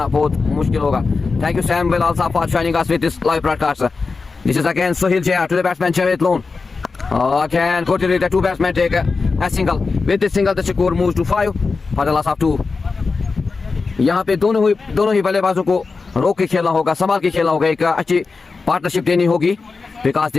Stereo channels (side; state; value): right; quieter; 4.4 dB